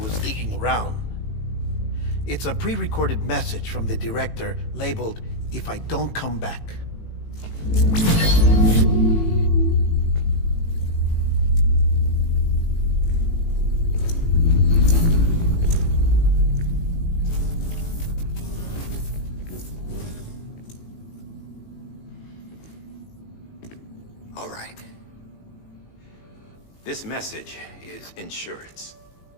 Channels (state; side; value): late; right; 18 ms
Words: digging around. It's a pre-recorded message from the director labeled, "If I don't come back." All right. This message is insurance,